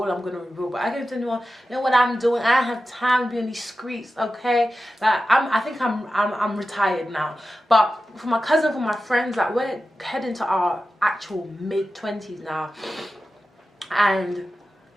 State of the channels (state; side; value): normal; both; correlation 0.93